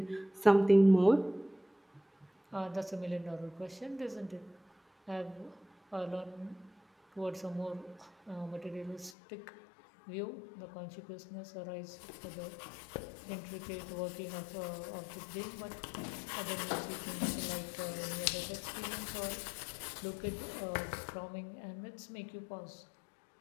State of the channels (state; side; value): drops out; right; at 9.2 s